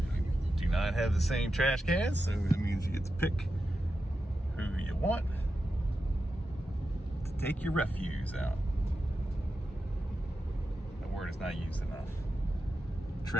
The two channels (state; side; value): normal; both; correlation 0.90